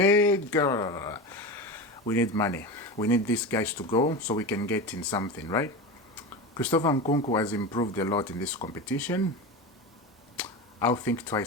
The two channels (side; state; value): both; normal; correlation 0.24